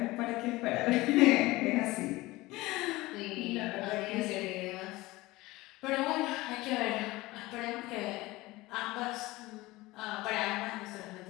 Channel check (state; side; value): quieter; right; 19.8 dB